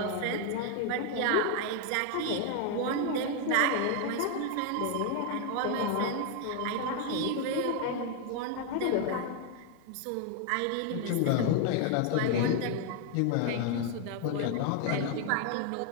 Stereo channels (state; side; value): different; both; correlation 0.00